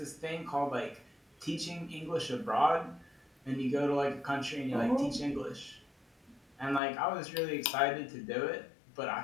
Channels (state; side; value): drops out; right; at 6.8 s